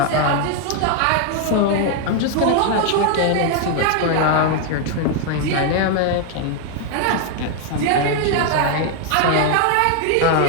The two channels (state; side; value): different; both; correlation 0.00